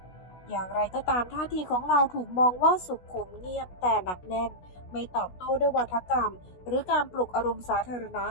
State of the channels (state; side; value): late; right; 16 ms